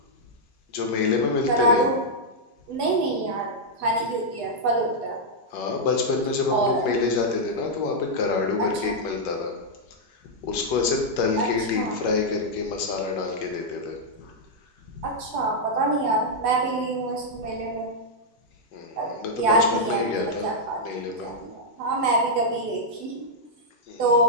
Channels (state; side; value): normal; both; correlation -0.05